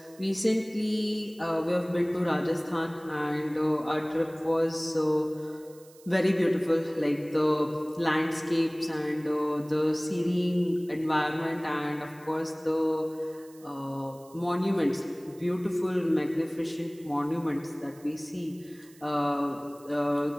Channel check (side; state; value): right; noise; hiss, 25 dB below the sound